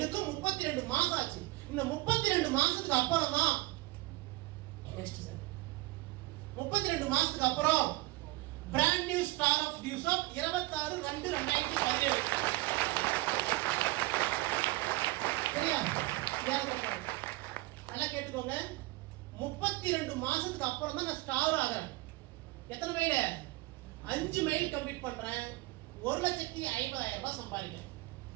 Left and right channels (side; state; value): left; quieter; 20.9 dB